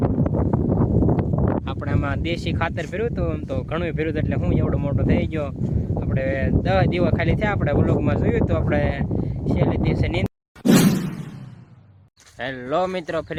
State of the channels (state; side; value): identical; both; correlation 1.00